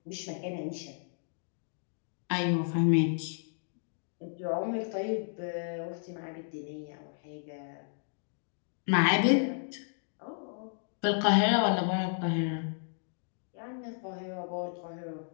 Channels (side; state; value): right; silent; digital silence